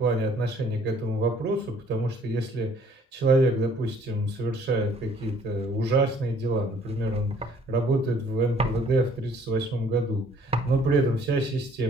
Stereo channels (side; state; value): both; normal; correlation 0.59